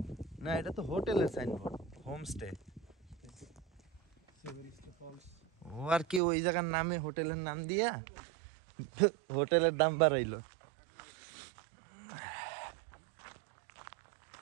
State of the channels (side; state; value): left; drops out; at 6.2 s